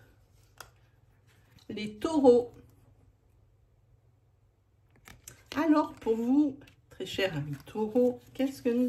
les taureaux. Alors, pour vous, très chers amis taureaux, qu'est-ce que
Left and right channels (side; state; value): both; identical; correlation 1.00